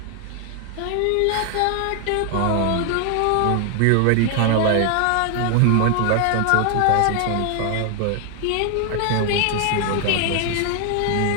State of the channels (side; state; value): both; different; correlation 0.00